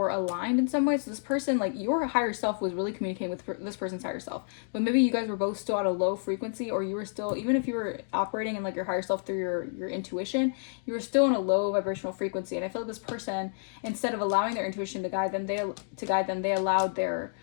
aligned in some way. So this person, like your higher self was really communicating with this person's higher self, but maybe you guys were both still at a low frequency, or you were still, even if you were operating in like your higher self through your intuition, you were still in a low vibrational frequency. And I feel like this person, instead of allowing their intuition to guide them, they allowed their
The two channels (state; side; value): silent; right; digital silence